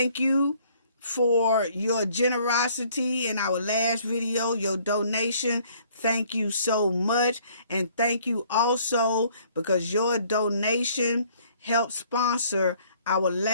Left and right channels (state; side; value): inverted; both; correlation -0.60